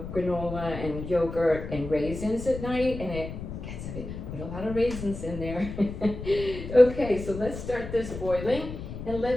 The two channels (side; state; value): left; noise; rumble, 9 dB below the sound